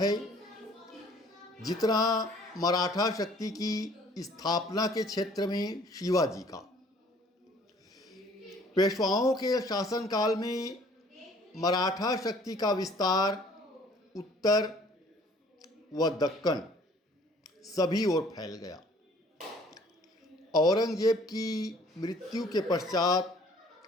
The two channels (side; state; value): both; normal; correlation 0.56